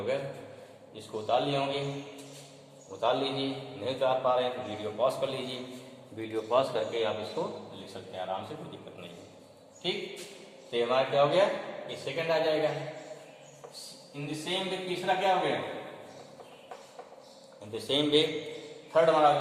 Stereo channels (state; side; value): identical; both; correlation 1.00